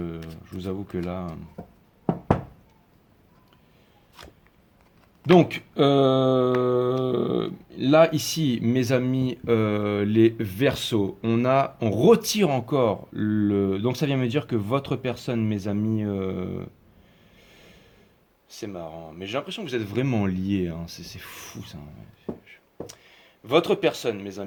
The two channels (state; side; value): identical; both; correlation 1.00